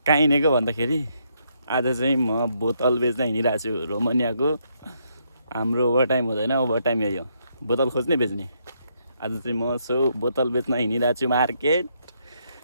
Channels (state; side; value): inverted; both; correlation -0.75